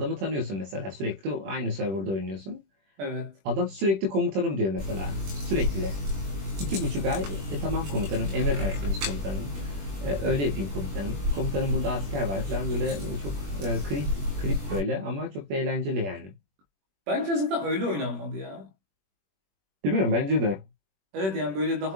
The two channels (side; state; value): left; late; 21 ms